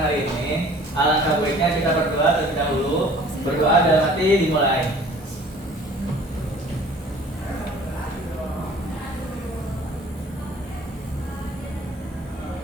hari ini, alangkah baiknya kita berdoa terlebih dahulu. Berdoa dalam hati dimulai.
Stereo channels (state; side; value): normal; both; correlation 0.50